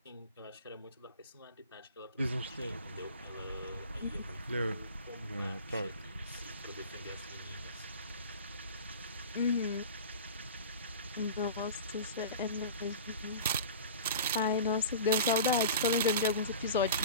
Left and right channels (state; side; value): inverted; both; correlation -0.35